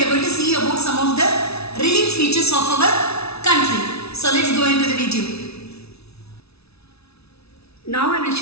are going to see about some of the relief features of our country. So let's go into the video. Now I will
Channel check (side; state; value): right; late; 0.79 ms